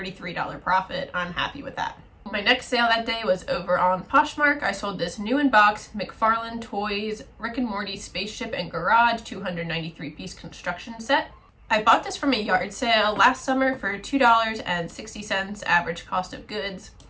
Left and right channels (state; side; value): identical; both; correlation 1.00